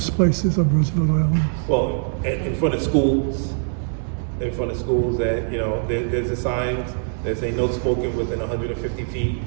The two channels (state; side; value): silent; left; 64 dB below the other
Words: places on Roosevelt Island? Well, in front of schools, that, there's a signs that say no smoking within 150 feet,